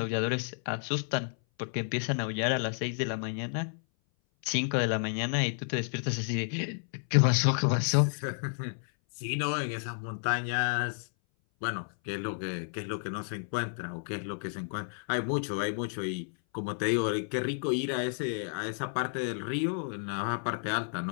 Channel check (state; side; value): silent; right; 57 dB below the other